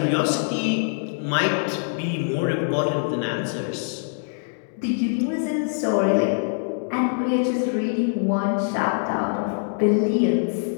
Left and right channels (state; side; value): silent; right; digital silence